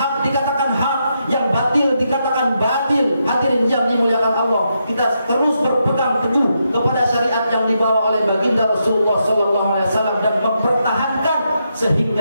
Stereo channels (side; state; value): both; inverted; correlation -0.82